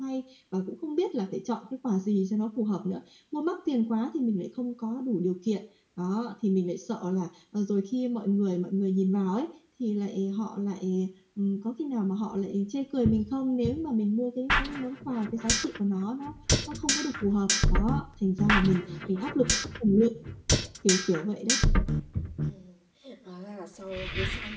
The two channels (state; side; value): identical; both; correlation 1.00